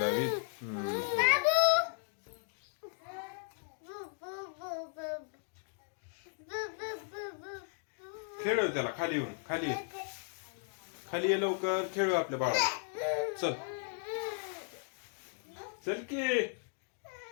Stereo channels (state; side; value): silent; right; 54 dB below the other